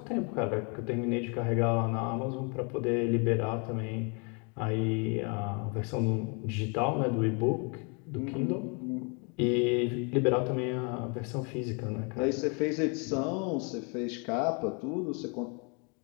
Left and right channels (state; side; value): quieter; right; 34.9 dB